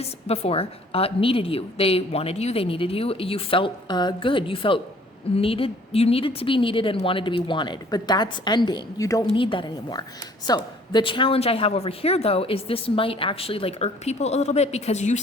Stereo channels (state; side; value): normal; both; correlation 0.56